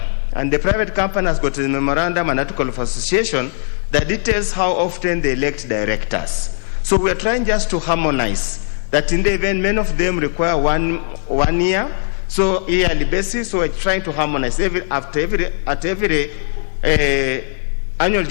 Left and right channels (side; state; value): right; silent; 64 dB below the other